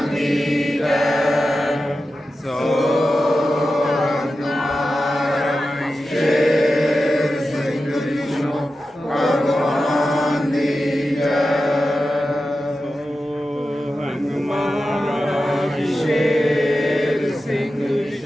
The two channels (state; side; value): normal; both; correlation 0.92